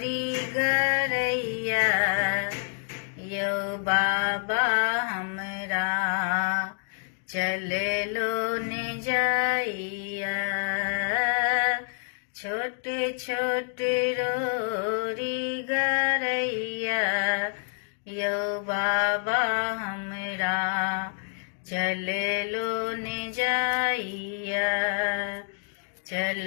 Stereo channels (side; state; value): right; silent; digital silence